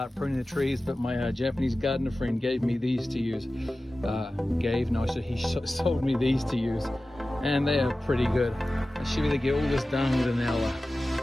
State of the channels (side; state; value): both; normal; correlation 0.95